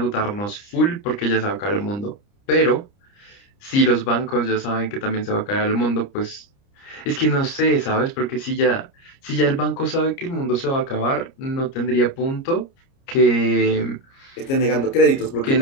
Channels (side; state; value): right; late; 30 ms